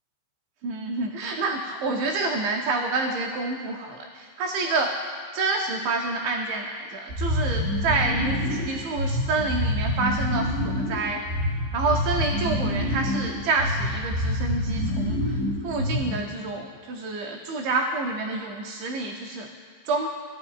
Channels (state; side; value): late; left; 15 ms